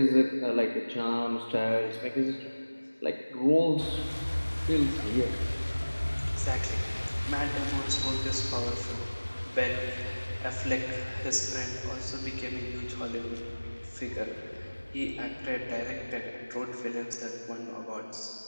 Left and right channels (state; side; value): inverted; both; correlation -1.00